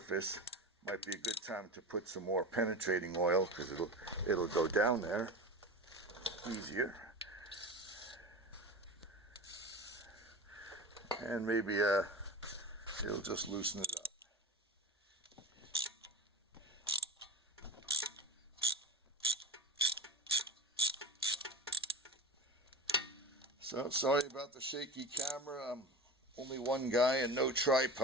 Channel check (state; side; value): normal; both; correlation 0.28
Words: might be a good time to put some more penetrating oil, because it'll go down there easier. And maybe it'll just loosen it up. So sorry about the shaky camera. I'm only one guy and no